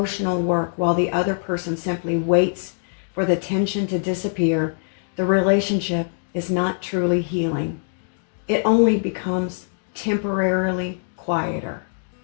work while the other person simply waits for the tension to disappear, the relationship is not truly healing. It only becomes temporarily quieter.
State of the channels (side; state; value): right; silent; digital silence